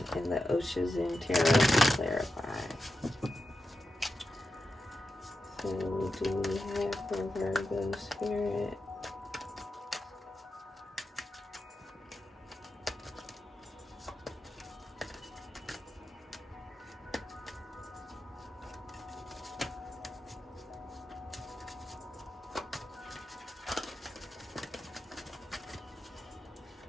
and the ʟᴏᴠᴇ Tarot to clarify. So what do we have for Virgo Spirit?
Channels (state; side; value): normal; both; correlation 0.90